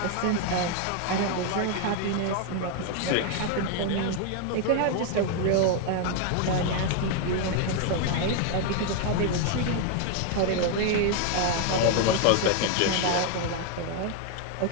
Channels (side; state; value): both; different; correlation 0.00